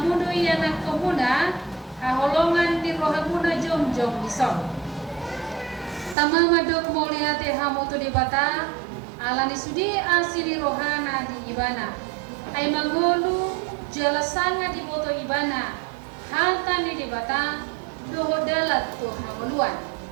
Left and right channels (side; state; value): left; drops out; at 6.2 s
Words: doi anak komuna haholongan di rohamuna jom-jom disong. Tama madok moliate hamu tu debata alani sudi asini rohana di ibana. Ay mangolu jalasanga di boto ibana. Halta ni debata doho dalat tu hamuluan.